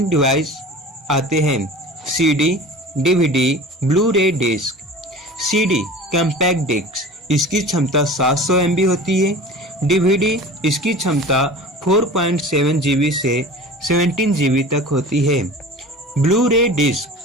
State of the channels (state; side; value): normal; both; correlation 0.38